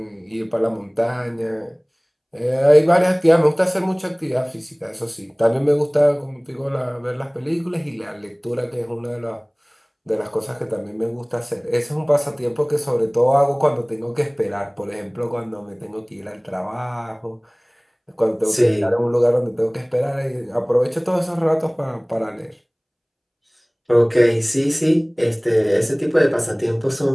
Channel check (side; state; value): both; identical; correlation 1.00